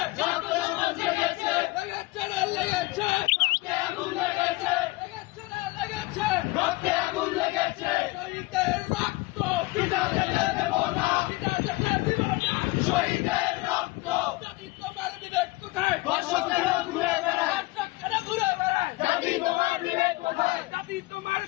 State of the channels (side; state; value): right; quieter; 21.6 dB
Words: রক্তে আমার জেগেছে, লেগেছে রক্তে আগুন লেগেছে, লেগেছে রক্তে আগুন লেগেছে। শহীদের রক্ত পিতা যেতে দেব না, পিতা যেতে দিব না। শহীদের রক্ত। জাতি তোমার বিবেক কোথায়? ধর্ষকেরা ঘুরে বেড়ায়, দর্শকেরা ঘুরে বেড়ায়। জাতি তোমার বিবেক কোথায়? জাতি তোমার